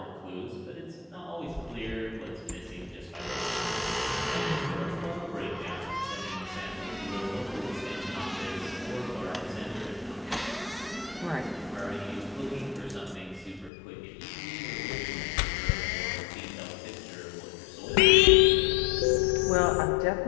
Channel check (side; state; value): right; drops out; at 13.7 s